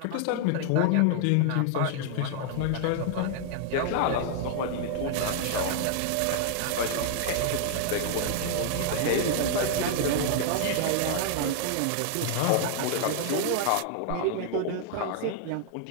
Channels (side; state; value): both; different; correlation -0.01